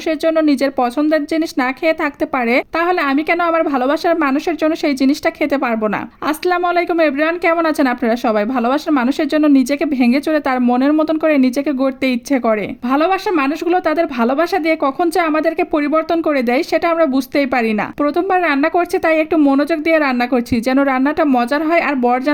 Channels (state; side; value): identical; both; correlation 1.00